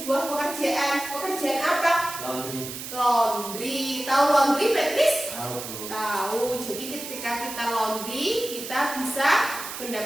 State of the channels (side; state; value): right; noise; hiss, 9 dB below the sound